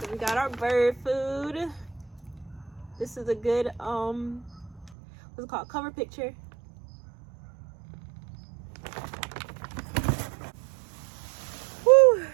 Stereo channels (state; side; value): drops out; left; at 5.0 s